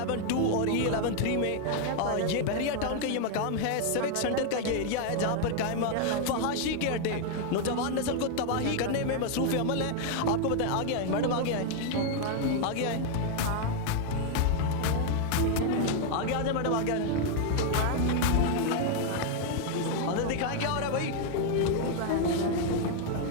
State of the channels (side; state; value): both; different; correlation 0.00